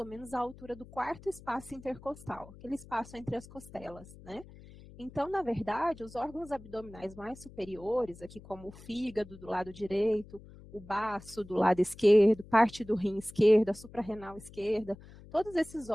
menos a altura do quarto espaço intercostal, aquele espaço entre as costelas, né? Então, na verdade, os órgãos abdominais mais superiores, aqui como o fígado do lado direito, o baço do lado esquerdo, parte do rim esquerdo, a suprarrenal esquerda, todos esses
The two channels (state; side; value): noise; left; hum, 19 dB below the sound